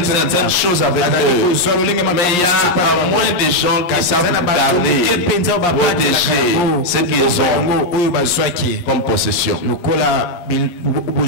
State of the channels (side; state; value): right; late; 11 ms